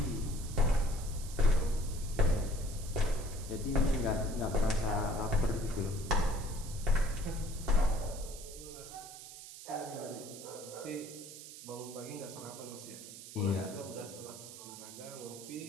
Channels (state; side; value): noise; right; hiss, 13 dB below the sound